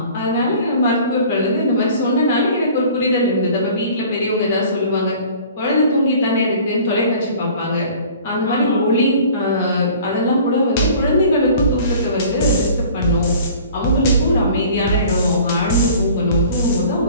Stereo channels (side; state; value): both; inverted; correlation -0.48